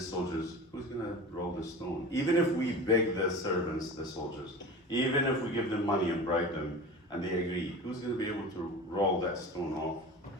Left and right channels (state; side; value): normal; both; correlation 0.34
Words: soldiers. Who's gonna roll the stone? Even if we beg the servants, the soldiers, even if we give them money and bribe them, and they agree, who's gonna be able to roll that stone off?